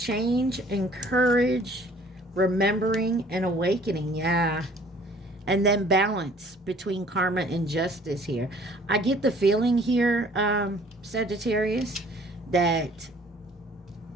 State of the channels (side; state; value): both; normal; correlation 0.55